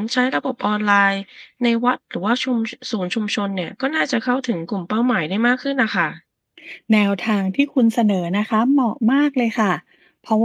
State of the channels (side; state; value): both; identical; correlation 1.00